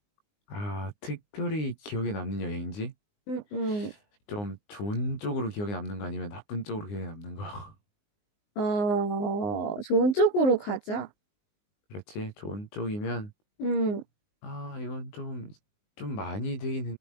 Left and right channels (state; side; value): late; right; 19 ms